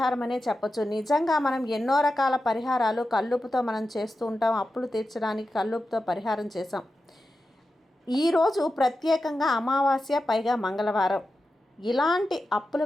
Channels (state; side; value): normal; both; correlation 0.91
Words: అనే చెప్పొచ్చు. నిజంగా మనం ఎన్నో రకాల పరిహారాలు కల్లుపుతో మనం చేస్తూ ఉంటాం. అప్పులు తీర్చడానికి కల్లుపుతో పరిహారం చేసాం. ఈరోజు ప్రత్యేకంగా అమావాస్య, పైగా మంగళవారం. ఇలాంటి అప్పుల